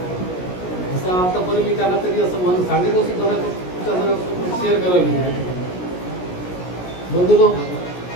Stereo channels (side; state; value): right; late; 17 ms